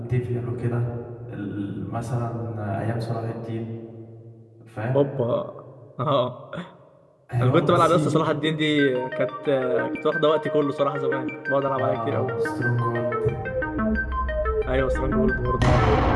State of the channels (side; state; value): both; identical; correlation 1.00